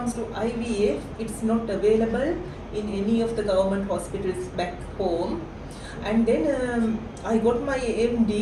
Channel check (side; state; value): both; identical; correlation 1.00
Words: to IVF, it's not available in any of the government hospitals back home. And then I got my